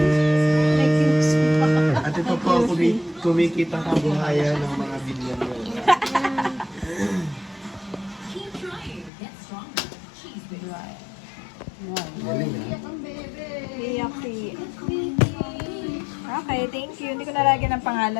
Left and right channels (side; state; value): right; drops out; at 9.1 s